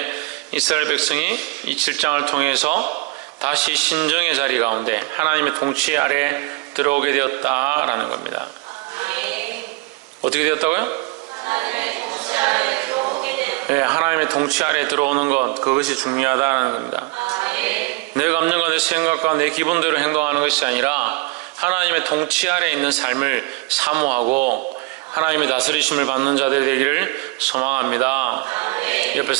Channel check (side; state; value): left; quieter; 24.9 dB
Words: 이스라엘 백성이 이 7장을 통해서 다시 신정의 자리 가운데 하나님의 통치 아래 들어오게 되었다라는 겁니다. 어떻게 되었다고요? 네, 하나님의 통치 아래 들어오는 것, 그것이 중요하다는 겁니다. 내 감정과 내 생각과 내 기분대로 행동하는 것이 아니라 하나님의 통치 아래 있는 삶을 사모하고 하나님의 다스리심을 받는 자들 되기를 소망합니다. 옆에